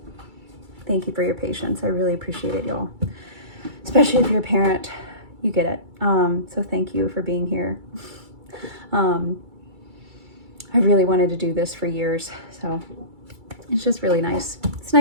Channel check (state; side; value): late; left; 2.3 ms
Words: Thank you for your patience. I really appreciate it, y'all. Especially if you're a parent, you get it. So thank you for being here. I really wanted to do this for years, so it's just really nice. It's